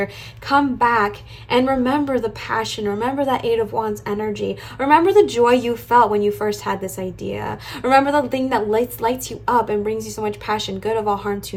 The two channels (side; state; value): both; identical; correlation 1.00